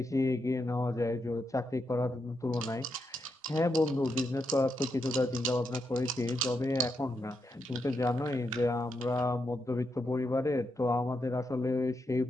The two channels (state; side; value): normal; both; correlation 0.83